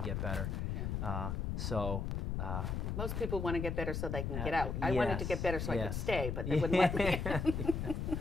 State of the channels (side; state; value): left; noise; rumble, 2 dB below the sound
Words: get better. Yeah. Most people want to get better so they can get out. I wanted to get better so I could stay, but they wouldn't let me.